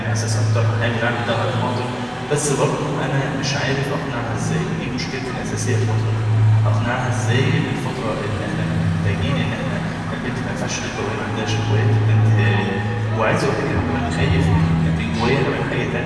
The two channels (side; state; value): both; identical; correlation 1.00